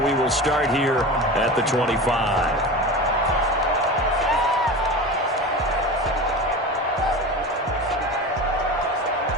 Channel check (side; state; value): both; normal; correlation 0.30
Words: will start here at the 25.